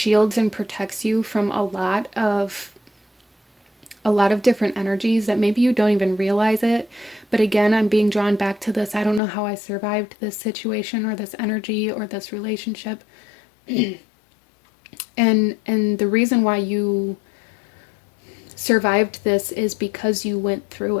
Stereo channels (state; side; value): drops out; right; at 9.2 s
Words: and protects you from a lot of different energies that maybe you don't even realize it. But again, I'm being drawn back to this. I don't know how I survived this situation or this energy or this relationship. And the reason why you survived this is because you went through